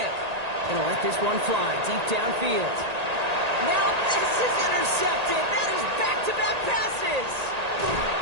Gonna let this one fly deep downfield. Now this is intercepted. That is back-to-back passes.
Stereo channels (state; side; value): late; left; 1.8 ms